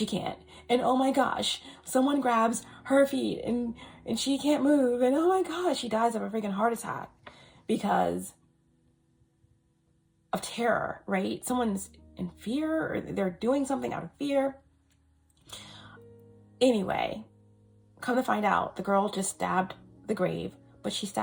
can't. And oh my gosh, someone grabs her feet, and she can't move. And oh my gosh, she dies of a freaking heart attack because of terror, right? Someone's in fear, or they're doing something out of fear. Anyway, come to find out, the girl just stabbed the grave, but she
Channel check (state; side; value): identical; both; correlation 1.00